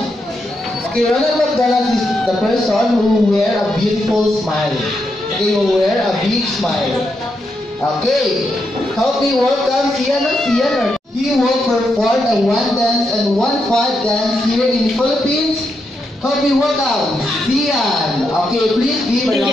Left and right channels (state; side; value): normal; both; correlation 0.82